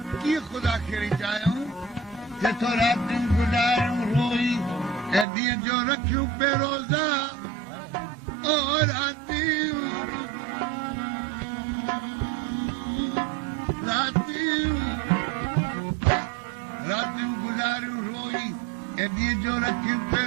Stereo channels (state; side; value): drops out; left; at 5.2 s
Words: कीअं ख़ुदा खे चाहियूं जेको रातियूं गुज़ारियूं रोई ऐं ॾींहं जो रखियूं बेरोज़ा ओ रातियूं गुज़ारियूं रोई ऐं ॾींहं जो रखियूं